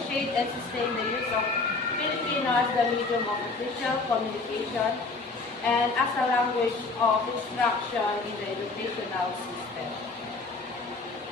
and sustain the use of Filipino as the medium of official communication and as a language of instruction in the educational system.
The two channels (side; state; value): right; quieter; 3.8 dB